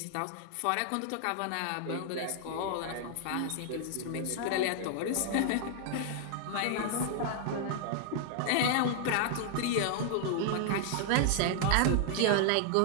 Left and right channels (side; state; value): both; different; correlation -0.01